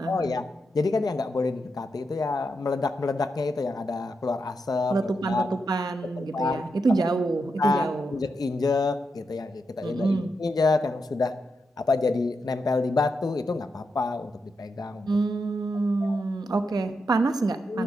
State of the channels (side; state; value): both; normal; correlation 0.85